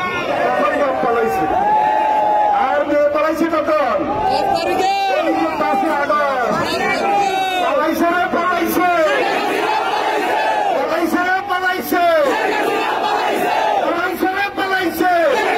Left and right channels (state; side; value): identical; both; correlation 1.00